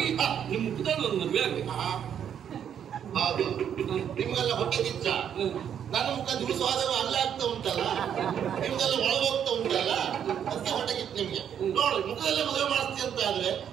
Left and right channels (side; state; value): left; quieter; 8.9 dB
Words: ನಿಮ್ಮ ಮುಖದಲ್ಲಿ ಒಂದು ಮದುವೆ ಆಗ್ಬೇಕು. ಹೌದು, ನಿಮ್ಗೆಲ್ಲ ಹೊಟ್ಟೆ ಕಿಚ್ಚ. ನನ್ನ ಮುಖ ದುಡಿಸುವಾಗ ಅಲ್ಲ ಆಗ್ತಾ ಉಂಟಲ್ಲ, ನಿಮ್ಗೆಲ್ಲ ಒಳಗೋಗ್ತಾ ಉಂಟಲ್ಲ, ಅದಕ್ಕೆ ಹೊಟ್ಟೆ ಕಿಚ್ಚ ನಿಮ್ಗೆ. ನೋಡು, ಮುಖದಲ್ಲೇ ಮದುವೆ ಮಾಡಿಸ್ತೀಯ ಅಂತ ಆದ್ರೆ